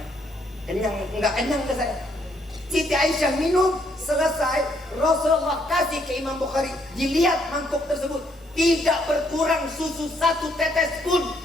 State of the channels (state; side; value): normal; both; correlation 0.71